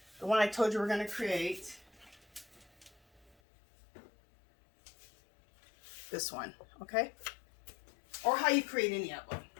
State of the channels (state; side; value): drops out; right; at 3.4 s